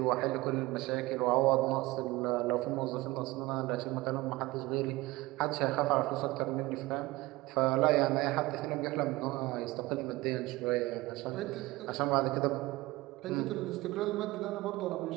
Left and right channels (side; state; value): left; quieter; 20.2 dB